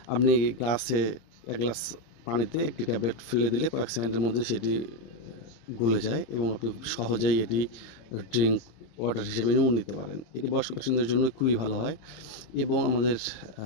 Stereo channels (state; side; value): late; right; 26 ms